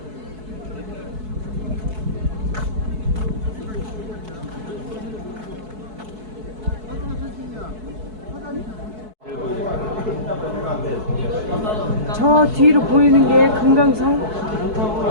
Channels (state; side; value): late; left; 4.6 ms